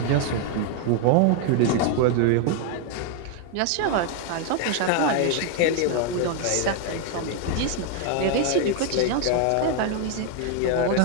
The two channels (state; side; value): different; both; correlation 0.01